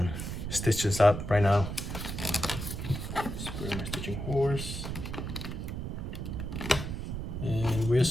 stitch this up right now. Spray my stitching horse, and we're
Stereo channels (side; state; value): right; noise; rumble, 5 dB below the sound